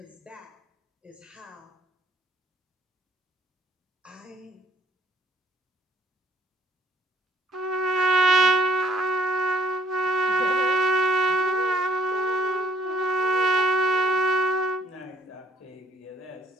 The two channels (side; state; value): both; normal; correlation 0.60